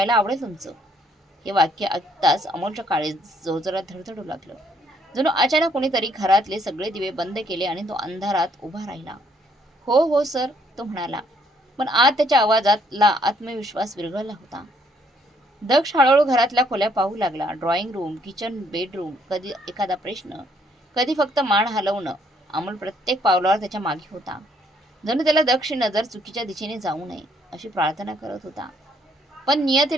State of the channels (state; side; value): normal; both; correlation 0.68